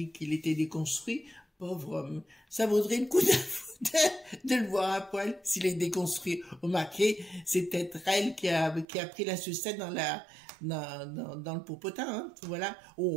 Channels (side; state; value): left; drops out; at 8.8 s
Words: qu'il était déconstruit. Pauvre homme. Ça vaudrait le coup de le voir à poil s'il est déconstruit. Remarquez, c'est peut-être elle qui a pris la sucette dans le popotin, hein. Voilà.